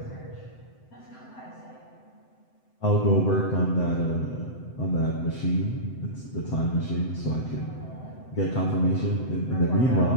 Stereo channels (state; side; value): late; right; 7.8 ms